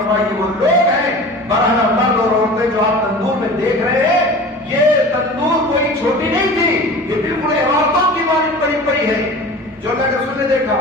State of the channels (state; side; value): normal; both; correlation 0.37